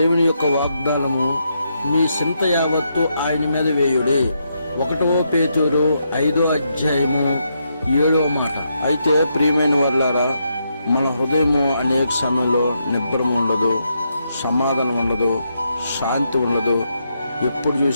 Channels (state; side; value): inverted; both; correlation -0.80